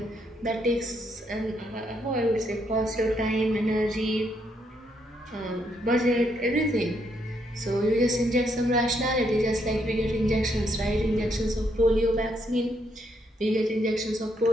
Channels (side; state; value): both; normal; correlation 0.75